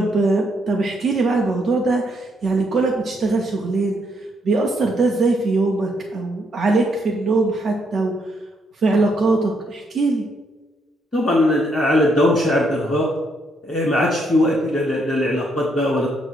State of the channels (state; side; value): normal; both; correlation 0.74